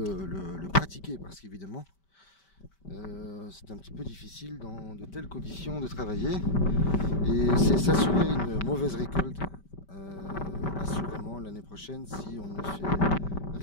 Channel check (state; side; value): late; right; 5.2 ms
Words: pratiquer. Parce qu'évidemment, c'est un petit peu difficile dans de telles conditions de travailler. Et c'est s'assurer une mauvaise récolte assurément l'année prochaine si on ne fait